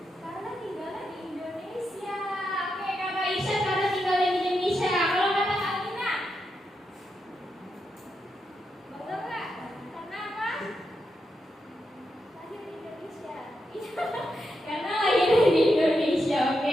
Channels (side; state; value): both; normal; correlation 0.85